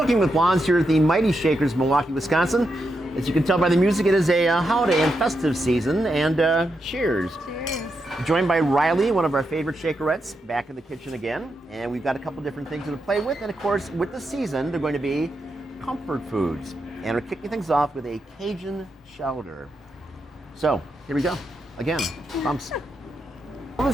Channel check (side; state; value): both; normal; correlation 0.84